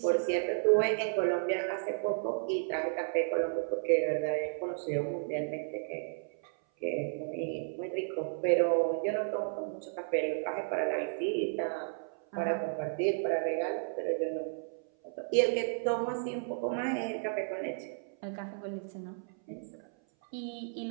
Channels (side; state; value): left; silent; 56 dB below the other